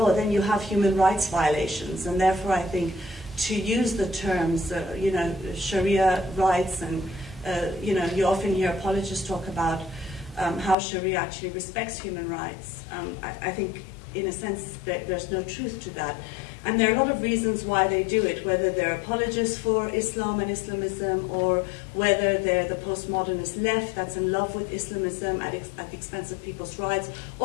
then you have human rights violations. And therefore, I think to use the terms, you know, Sharia rights, and you know, you often hear apologists talk about how Sharia actually respects human rights. I think, in a sense, there's no truth to that. And there are a lot of reasons why they do it, whether they're apologists for Islam and Islamism, or whether they're the postmodernist left that's in love with Islamism at the expense of people's rights,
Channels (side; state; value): right; drops out; at 10.8 s